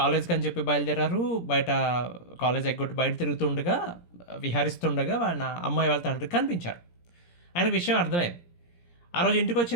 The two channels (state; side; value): late; right; 17 ms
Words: అని చెప్పి బయలుదేరారు. బయట కాలేజ్ ఎగ్గొట్టి బయట తిరుగుతుండగా, విహరిస్తుండగా వాళ్ళ అమ్మాయి వాళ్ళ తండ్రికి కనిపించారు. ఆయనకు విషయం అర్థమైంది. ఆ రోజు ఇంటికి